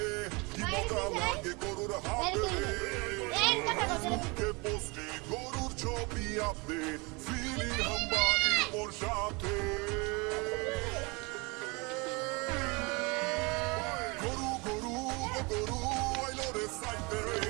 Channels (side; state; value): left; quieter; 27.5 dB